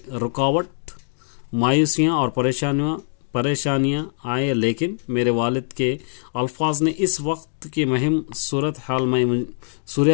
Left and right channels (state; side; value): silent; right; digital silence